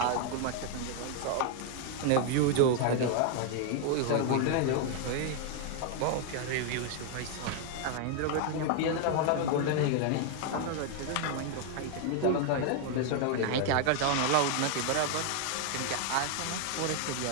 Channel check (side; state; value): both; different; correlation 0.00